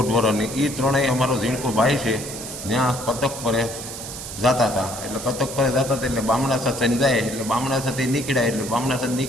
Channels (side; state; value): right; noise; hiss, 9 dB below the sound